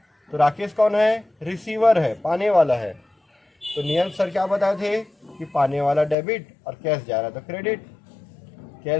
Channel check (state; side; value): drops out; right; at 6.2 s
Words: तो राकेश कौन है? रिसीवर है, पाने वाला है। तो नियम सर क्या बताए थे कि पाने वाला डेबिट और कैश जा रहा तो क्रेडिट।